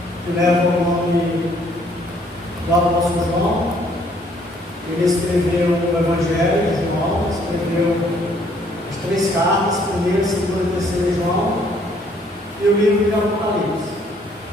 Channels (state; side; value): normal; both; correlation 0.64